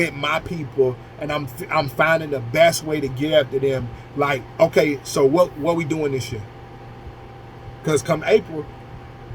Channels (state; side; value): identical; both; correlation 1.00